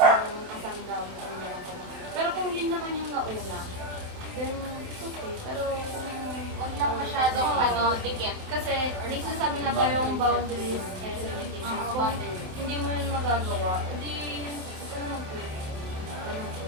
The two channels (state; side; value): late; left; 27 ms